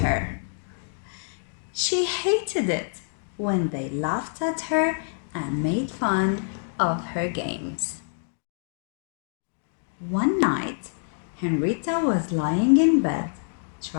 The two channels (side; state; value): right; silent; digital silence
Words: her. She hated it when they laughed at her and made fun of her games. One night, Henrietta was lying in bed